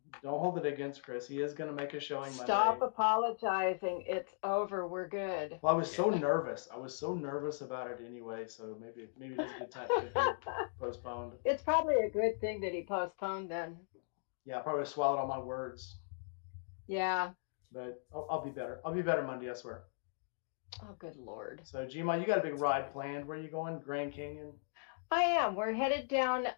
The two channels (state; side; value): silent; right; digital silence